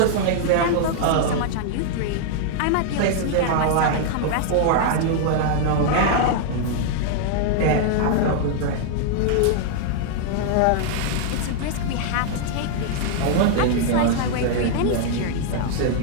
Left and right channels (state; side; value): different; both; correlation 0.00